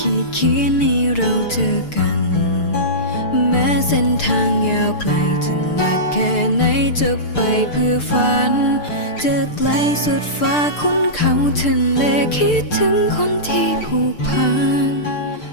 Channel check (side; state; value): right; late; 6.7 ms